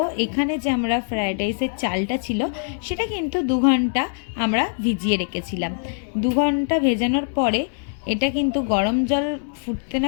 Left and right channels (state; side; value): silent; right; digital silence